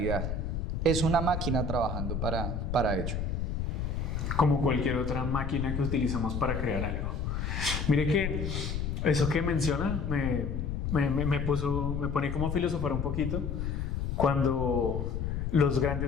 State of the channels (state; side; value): noise; left; rumble, 2 dB below the sound